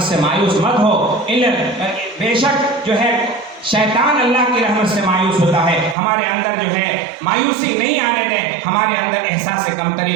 سے مایوس مت ہو۔ بے شک جو ہے شیطان اللہ کی رحمت سے مایوس ہوتا ہے، ہمارے اندر جو ہے مایوسی نہیں آنے دیں، ہمارے اندر احساس کمتری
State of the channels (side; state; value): left; drops out; at 6.0 s